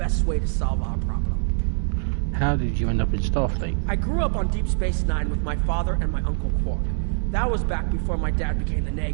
way to solve our problem. How did you end up in Starfleet? I grew up on Deep Space Nine with my father and my Uncle Quark. That was back before my dad became the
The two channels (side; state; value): left; silent; digital silence